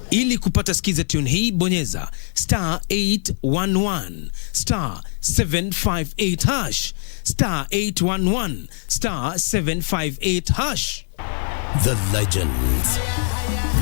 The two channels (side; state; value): right; silent; digital silence